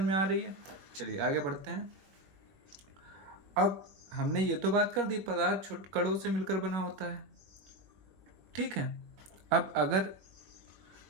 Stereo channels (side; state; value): left; late; 21 ms